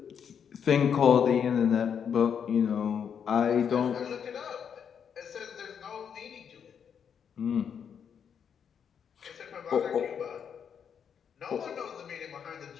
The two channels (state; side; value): quieter; right; 7.6 dB